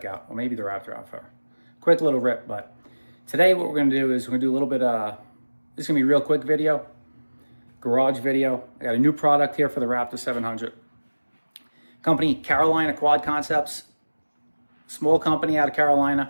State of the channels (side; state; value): both; inverted; correlation -1.00